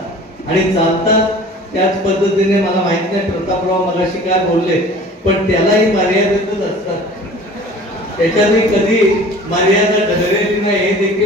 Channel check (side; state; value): both; normal; correlation 0.45